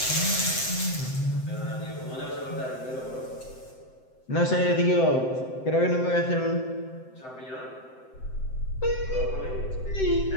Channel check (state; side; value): late; right; 7.8 ms